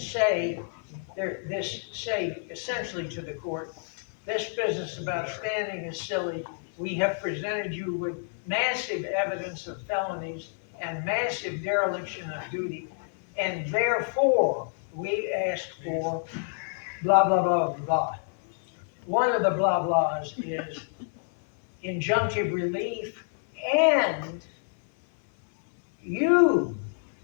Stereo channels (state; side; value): silent; right; 56 dB below the other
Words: say essentially to the court, this business about standing is silly. We have presented you with massive evidence of felonies and massive dereliction of duty, and therefore, we ask for blah, blah, blah, blah. One of the blah blahs is injunctive relief, and you,